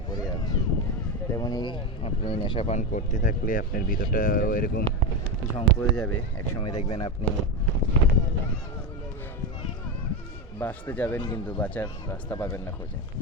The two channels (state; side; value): normal; both; correlation 0.15